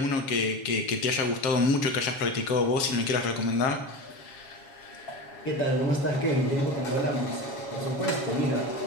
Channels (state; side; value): late; right; 7.3 ms